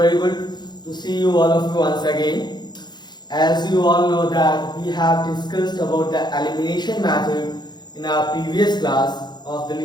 good to see you all of you once again. As you all know that we have discussed about the elimination method in our previous class of the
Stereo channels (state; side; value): late; right; 0.21 ms